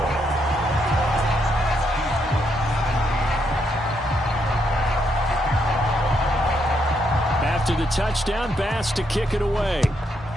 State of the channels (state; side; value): normal; both; correlation 0.77